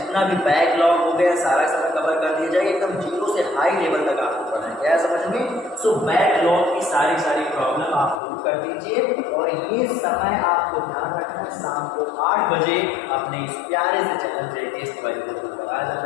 भी बैकलॉग हो गया सारा का सारा कवर कर दिया जाएगा, एकदम जीरो से हाई लेवल तक आपको पढ़ना है। क्या समझ में? सो बैकलॉग की सारी प्रॉब्लम आप दूर कर दीजिए। और ये समय आपको ध्यान रखना है, शाम को 8 बजे अपने इस प्यारे से चैनल जैके तिवारी को पर आ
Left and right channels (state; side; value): drops out; right; at 8.2 s